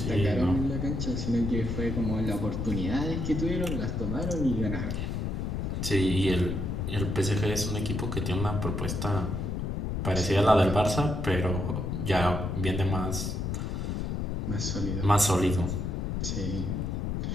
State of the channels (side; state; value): left; noise; rumble, 2 dB below the sound